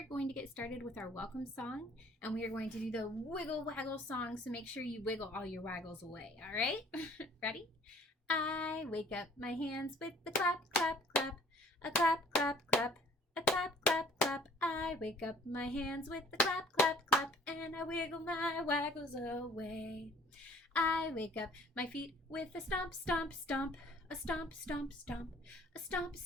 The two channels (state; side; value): normal; both; correlation 0.54